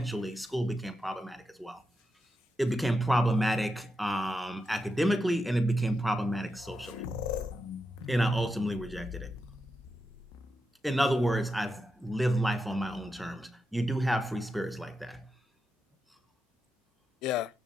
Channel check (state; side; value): normal; both; correlation 0.87